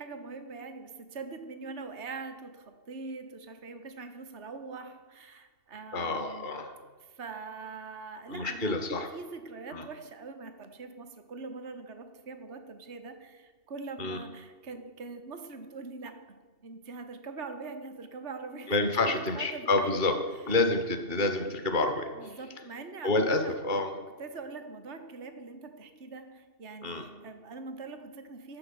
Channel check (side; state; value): left; late; 2.7 ms